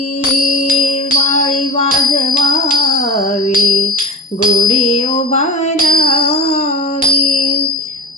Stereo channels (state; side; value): normal; both; correlation 0.28